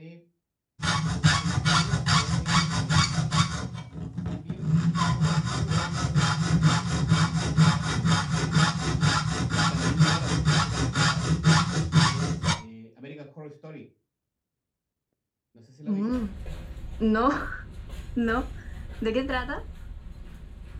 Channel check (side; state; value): both; identical; correlation 1.00